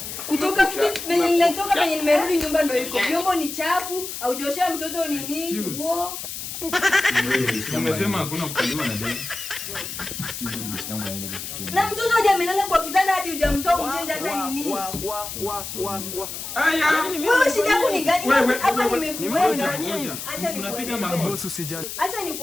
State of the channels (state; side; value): noise; left; hiss, 8 dB below the sound